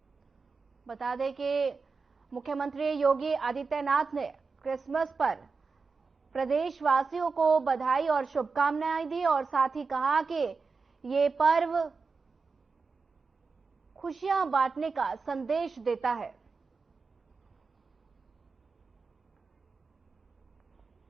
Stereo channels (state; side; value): quieter; left; 4.6 dB